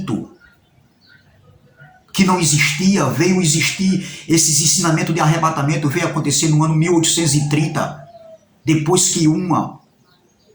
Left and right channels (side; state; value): both; identical; correlation 1.00